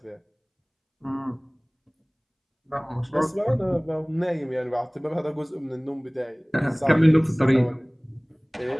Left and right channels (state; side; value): identical; both; correlation 1.00